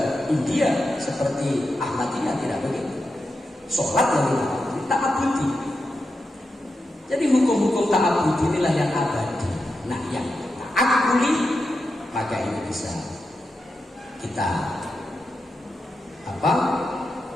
India seperti Ahmadiyah, tidak begitu. Sholat yang ta'abudi. Jadi hukum-hukum ta'abudi inilah yang abadi. Nah, yang ta'akuli maka ini bisa kita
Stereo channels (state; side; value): normal; both; correlation 0.88